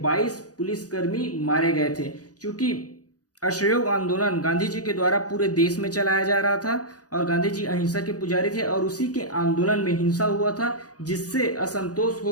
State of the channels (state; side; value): late; right; 0.68 ms